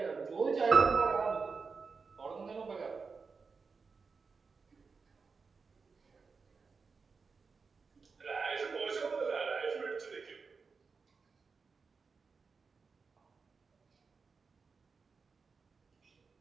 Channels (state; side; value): quieter; left; 4.9 dB